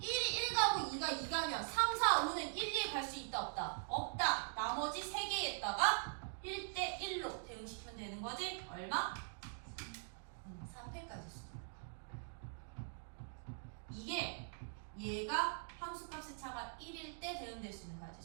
1이 1 가고 2가 2 가면 3, 4, 5는 1, 2에 갈 수 있다 없다? 없다. 나머지 3개에다가 1대1로 대응시키면 되는 거지? 얼마? 3패까지 수. 이게 얘가 함수값의 차가 1일 때 대응될 수 있는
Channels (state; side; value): silent; left; digital silence